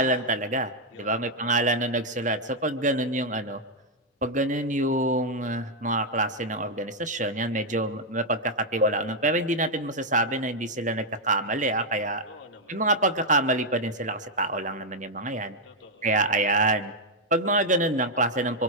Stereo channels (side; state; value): both; normal; correlation -0.01